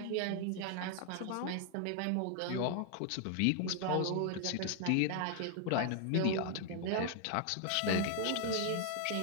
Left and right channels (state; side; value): different; both; correlation 0.00